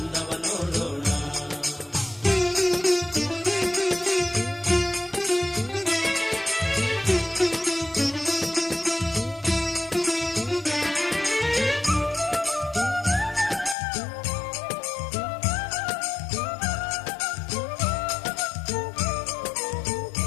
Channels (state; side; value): drops out; right; at 13.8 s